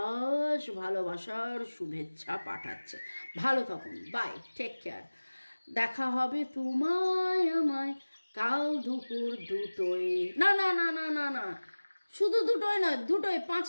ভালোবাসার শুভেচ্ছা পাঠাচ্ছে। ভালো থাকুন, বাই, টেক কেয়ার। দেখা হবে তোমায় আমায় কাল দুপুর 2টোয়, না না না না না না, শুধু 2টোয় নয়, 2টোয়,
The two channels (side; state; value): both; inverted; correlation -1.00